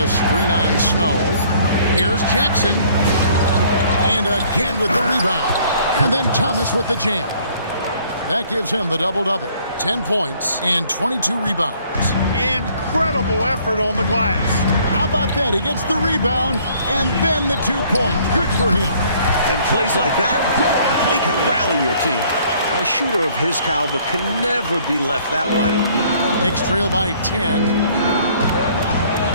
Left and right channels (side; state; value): both; inverted; correlation -0.60